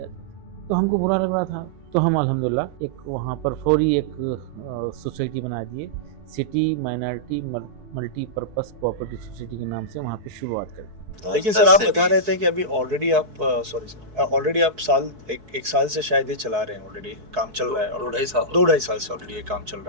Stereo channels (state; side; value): late; left; 4.6 ms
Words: थे। तो हमको बुरा लग रहा था, तो हम अल्हम्दुलिल्लाह एक वहाँ पर फौरी एक सोसाइटी बना दिए, city minority multipurpose cooperative society के नाम से वहाँ पे शुरुआत कर दी। लेकिन सर आप बता रहे थे कि अभी ऑलरेडी आप ऑलरेडी आप एक साल से शायद ये चला रहे हैं, ऑलरेडी काम चल रहा है, और 2-2.5 साल से ऑलरेडी ये काम चल